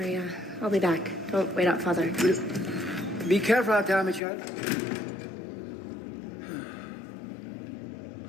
I'll be back. Don't wait out, Father. Be careful out there, my child.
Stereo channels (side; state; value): right; drops out; at 4.2 s